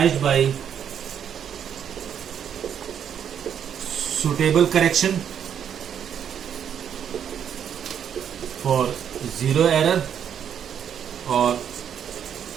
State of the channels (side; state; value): left; quieter; 8.6 dB